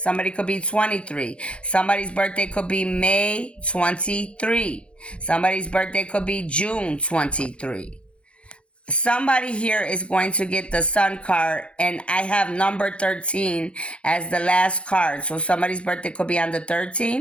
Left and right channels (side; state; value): right; late; 0.059 ms